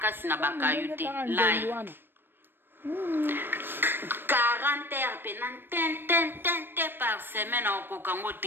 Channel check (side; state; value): left; late; 0.098 ms